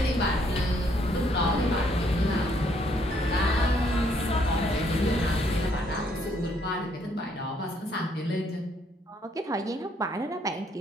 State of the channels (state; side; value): normal; both; correlation 0.69